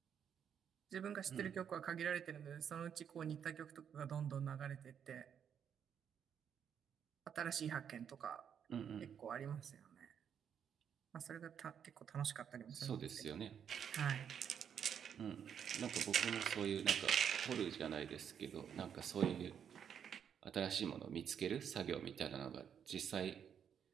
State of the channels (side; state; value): left; quieter; 8.2 dB